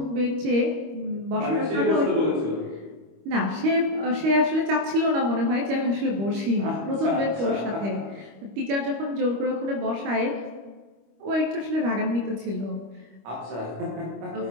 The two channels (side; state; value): left; late; 25 ms